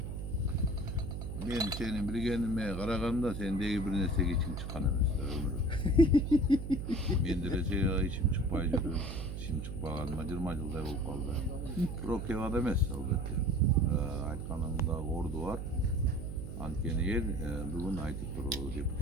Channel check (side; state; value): right; noise; hum, 5 dB below the sound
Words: Men seni bilgenime karaganda sendeki bir nersege içim çıkan emes da ömrü. Men de içim çıkpay жүрөм. İçim çıkpagaныma 20 жылдай болуп калды. Бирок кеп адам эмес албетте. Айтканыңда орду бар. Анткени эл бүгүн айтып туруп